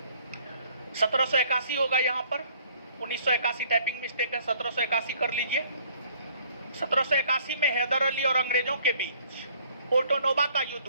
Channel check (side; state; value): both; inverted; correlation -0.58